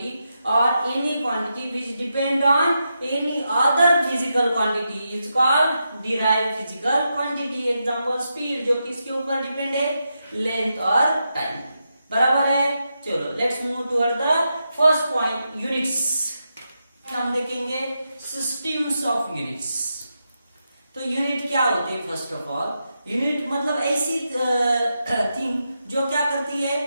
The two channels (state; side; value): inverted; both; correlation -0.86